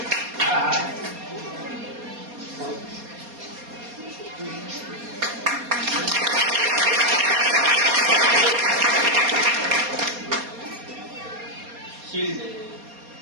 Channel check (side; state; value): left; late; 4.2 ms